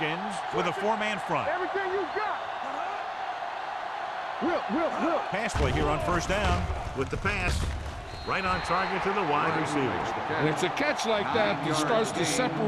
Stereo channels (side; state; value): both; identical; correlation 1.00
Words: with a four-man front. Everything you got. Will. Pass play here on first down with the pass. Right on target to the wide receiver. And it's a catch like that that starts to